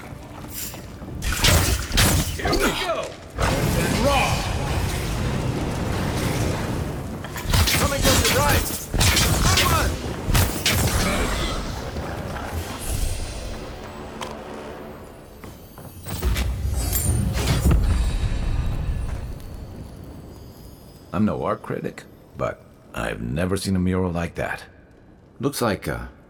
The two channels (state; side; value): identical; both; correlation 1.00